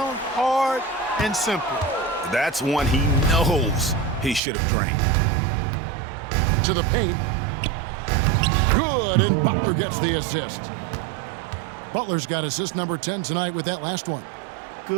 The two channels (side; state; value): left; drops out; at 4.4 s